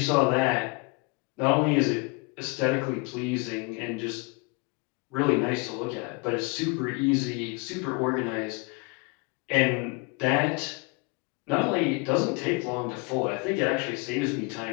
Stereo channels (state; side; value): quieter; right; 29.8 dB